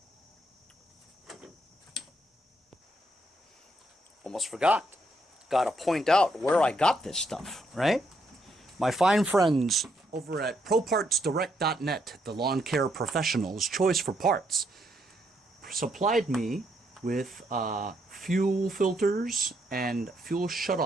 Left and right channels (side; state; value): both; normal; correlation 0.76